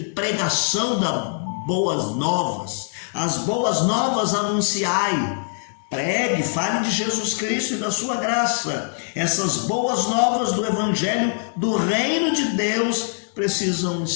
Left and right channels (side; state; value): right; silent; 64 dB below the other